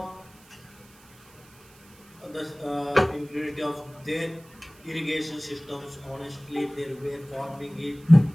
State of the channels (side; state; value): right; noise; hiss, 26 dB below the sound